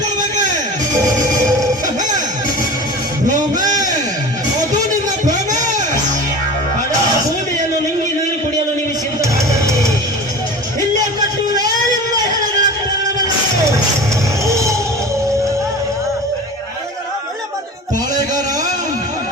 ಭ್ರಮೆ, ಅದು ನಿನ್ನ ಭ್ರಮೆ. ಭೂಮಿಯನ್ನು ನುಂಗಿ ನೀರು ಕುಡಿಯಲು ನೀವು ಸಿದ್ಧರಾಗಲಿ. ಇಲ್ಲೇ ಕಟ್ಟುವೆ ನಿಮ್ಮ ಹೆಣಗಳ ಪ್ರಾಣವನ್ನು. ಪಾಳೆಗಾರ,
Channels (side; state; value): both; normal; correlation 0.35